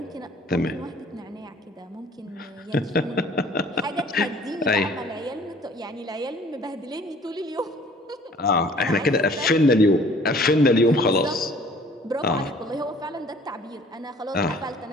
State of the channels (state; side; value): normal; both; correlation 0.53